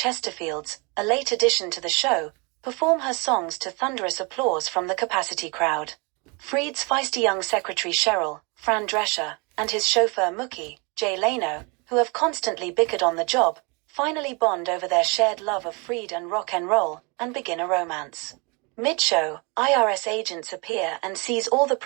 a late addition to the show, perform her songs to thunderous applause from the capacity crowd. Freed's feisty young secretary Cheryl, Fran Drescher, and his chauffeur Mookie, Jay Leno, who have constantly bickered on the job, finally bond over their shared love of Freed and rock and roll, and begin a romance. Mid-show, IRS agents appear and seize all the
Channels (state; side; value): quieter; left; 30.6 dB